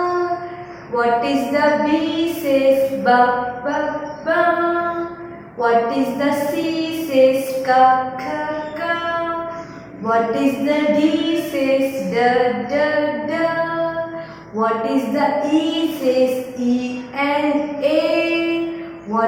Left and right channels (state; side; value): identical; both; correlation 1.00